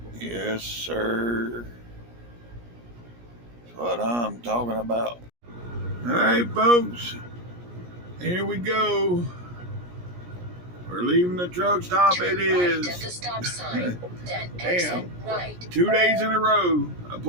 Yes, sir. That's what I'm talking about. All right, folks. Here we go. We're leaving the truck stop. Turn it is. Right at the stop sign. Then exit right. 2 days in a row, I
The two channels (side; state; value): left; late; 17 ms